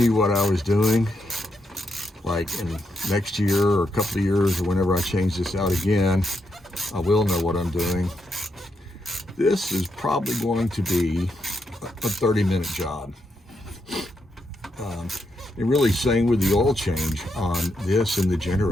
what I was doing, like in next year or a couple of years or whenever I change this out again, I will know what I'm doing. This is probably going to be a 30-minute job. And really, same with the oil change on this and the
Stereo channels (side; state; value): both; normal; correlation 0.82